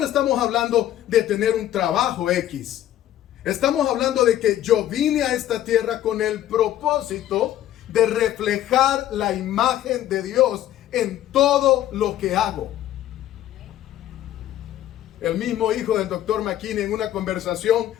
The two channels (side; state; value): right; quieter; 12.5 dB